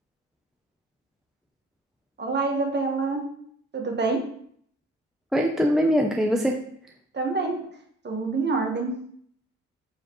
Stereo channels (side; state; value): both; normal; correlation 0.57